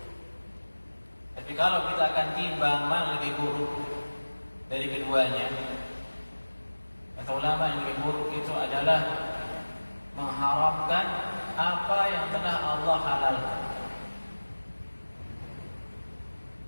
Tapi kalau kita akan timbang mana lebih buruk dari keduanya, kata ulama yang lebih buruk itu adalah mengharamkan apa yang telah Allah halalkan.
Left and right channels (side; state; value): both; inverted; correlation -1.00